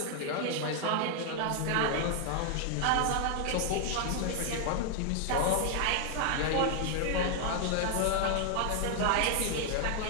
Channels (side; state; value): both; different; correlation 0.00